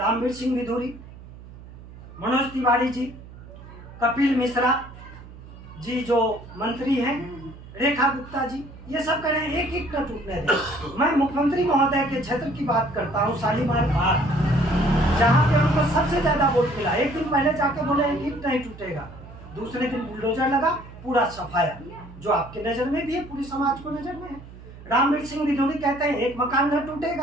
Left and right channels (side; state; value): right; noise; hum, 17 dB below the sound